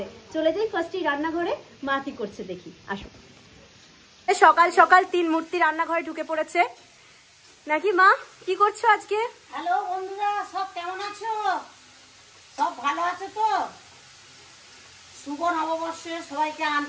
চলে যাই ফার্স্টে রান্নাঘরে, মা কি করছে দেখি, আসো। সকাল সকাল তিন মূর্তি রান্নাঘরে ঢুকে পড়েছে নাকি? মা কি করছো আজকে? হ্যালো বন্ধুরা, সব কেমন আছো? সব ভালো আছো তো? শুভ নববর্ষে সবাইকে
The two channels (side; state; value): both; identical; correlation 1.00